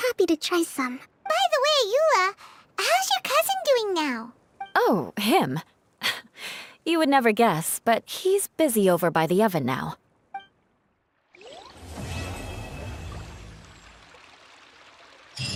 to try some. By the way, Eula, how's your cousin doing now? Oh, him. You would never guess, but he's busy over by the oven now.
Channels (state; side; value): identical; both; correlation 1.00